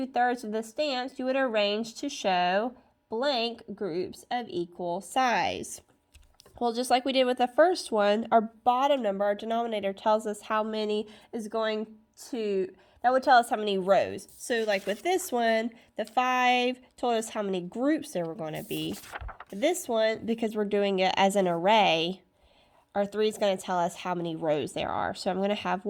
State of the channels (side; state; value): both; identical; correlation 1.00